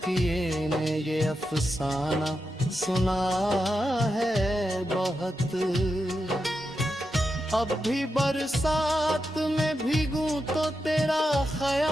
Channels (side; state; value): both; normal; correlation 0.87